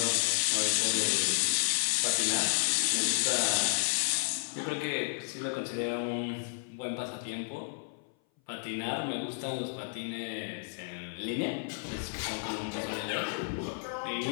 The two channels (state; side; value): silent; right; 56 dB below the other